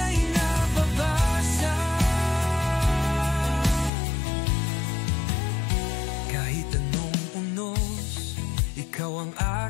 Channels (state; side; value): drops out; right; at 3.9 s